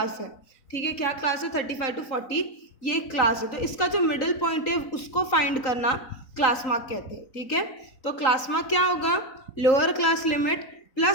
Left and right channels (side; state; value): right; late; 4.0 ms